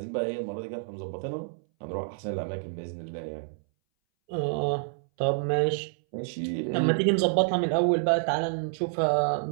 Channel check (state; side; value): silent; left; 59 dB below the other